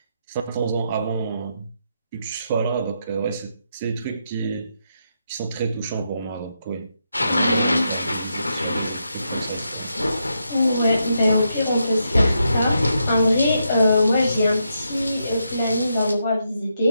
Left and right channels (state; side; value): inverted; both; correlation -0.81